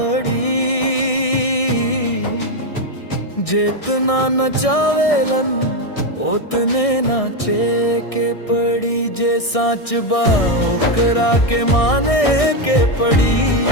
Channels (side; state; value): right; late; 1.6 ms